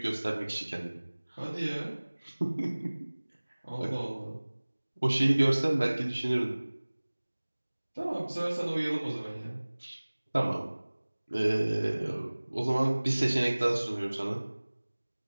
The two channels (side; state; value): both; inverted; correlation -1.00